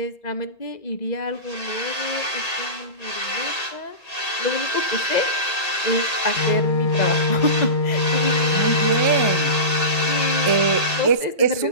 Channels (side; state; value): right; late; 1.8 ms